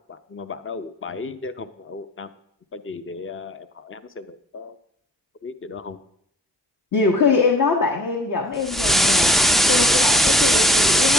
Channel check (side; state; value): both; normal; correlation 0.49